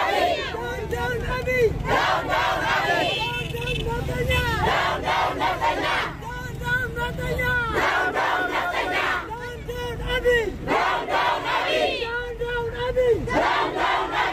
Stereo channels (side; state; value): both; identical; correlation 1.00